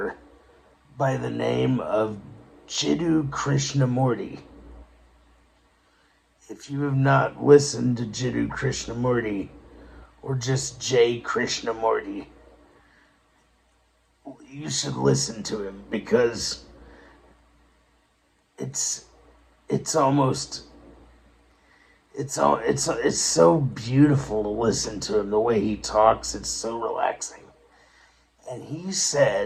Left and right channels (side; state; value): both; identical; correlation 1.00